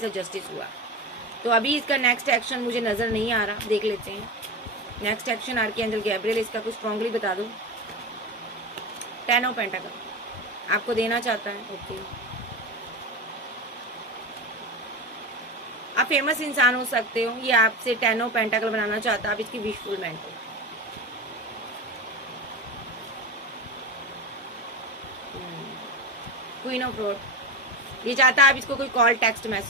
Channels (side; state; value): both; normal; correlation 0.24